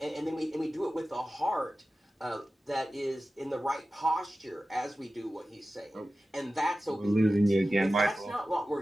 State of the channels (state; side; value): normal; both; correlation 0.95